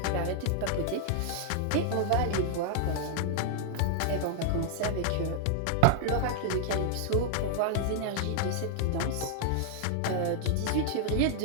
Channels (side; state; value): both; different; correlation -0.01